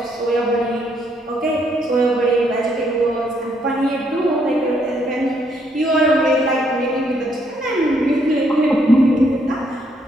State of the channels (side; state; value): both; normal; correlation 0.72